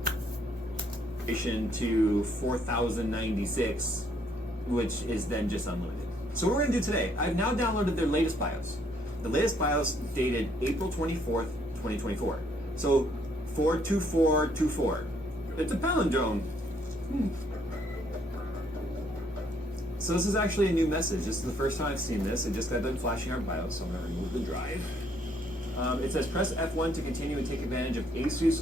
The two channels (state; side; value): normal; both; correlation 0.68